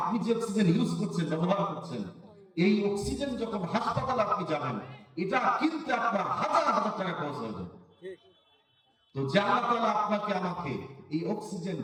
যে অক্সিজেন ইউজ করছেন, ব্যবহার করছেন, এই অক্সিজেন যখন হাসপাতালে আপনি যাবেন, এটা কিনতে আপনার হাজার হাজার টাকা খরচ হয়ে যাবে। তো যে আল্লাহ তাআলা আপনাকে আমাকে এই অক্সিজেন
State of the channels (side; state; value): both; identical; correlation 1.00